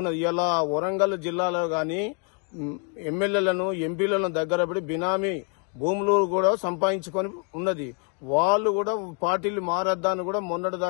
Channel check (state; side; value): quieter; right; 35.4 dB